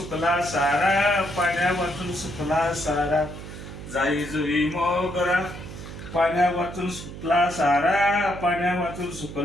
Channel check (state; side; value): noise; right; hum, 12 dB below the sound